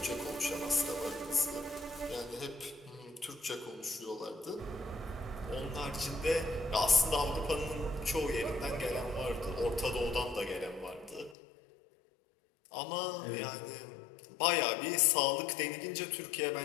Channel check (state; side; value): drops out; right; at 11.4 s